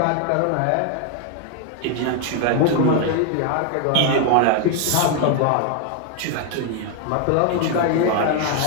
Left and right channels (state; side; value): different; both; correlation 0.01